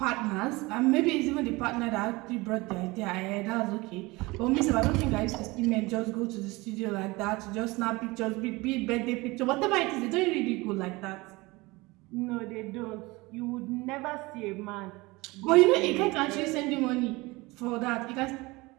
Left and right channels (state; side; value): quieter; left; 22.7 dB